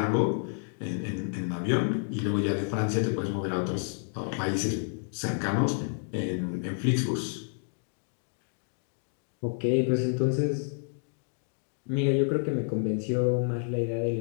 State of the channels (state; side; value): silent; right; 58 dB below the other